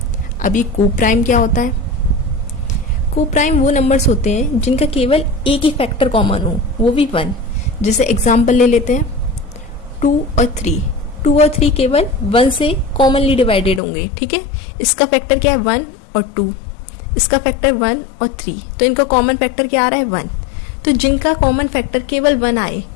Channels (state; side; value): drops out; right; at 13.8 s